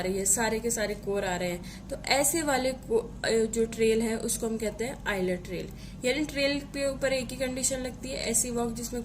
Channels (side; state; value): both; identical; correlation 1.00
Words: है, सारे के सारे कोर आ रहे हैं। तो ऐसे वाले जो ट्रेल है उसको हम कहते हैं आइलर ट्रेल। यानी ट्रेल के ऊपर एक ही कंडीशन लगती है, ऐसी वॉक जिसमें